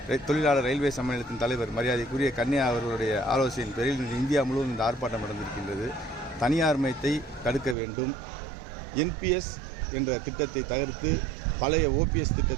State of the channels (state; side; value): drops out; left; at 7.8 s